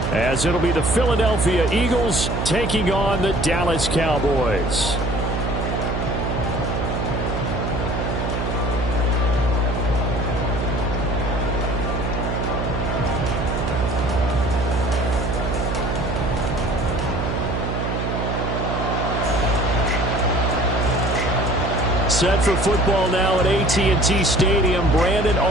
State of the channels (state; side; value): noise; right; hum, 2 dB below the sound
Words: as it'll be the Philadelphia Eagles taking on the Dallas Cowboys. Set for football now at AT&T Stadium. Brandon